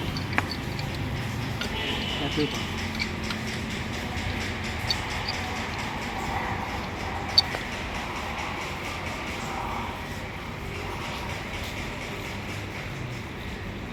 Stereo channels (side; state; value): both; identical; correlation 1.00